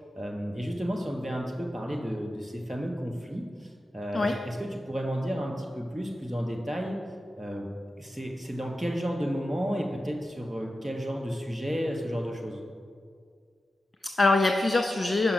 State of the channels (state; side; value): normal; both; correlation 0.92